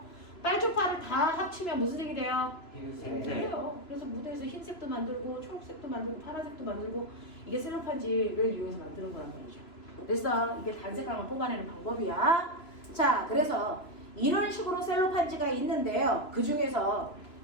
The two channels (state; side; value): late; right; 3.0 ms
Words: 빨초파를 다 합치면 무슨 색이 돼요? 흰색. 돼요. 그래서 무대에서 흰색도 만들고 초록색도 만들고 파란색도 만들고 이게 셀로판지를 이용해서 만드는 거란 말이죠. 그래서 이게 단색깔만 뽑아내는 방법이야. 자, 그래서 이런 식으로 셀로판지가 있는데요. 그 중에서